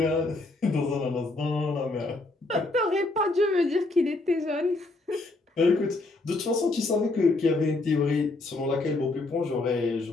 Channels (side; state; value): right; quieter; 3.1 dB